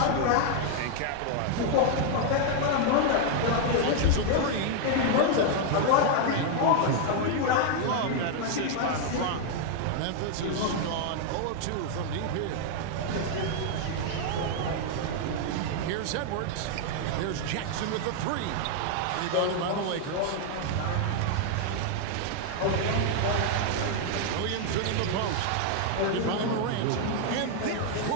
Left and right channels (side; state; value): both; different; correlation 0.00